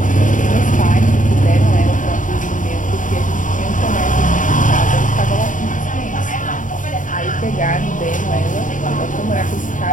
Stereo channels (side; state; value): right; late; 0.38 ms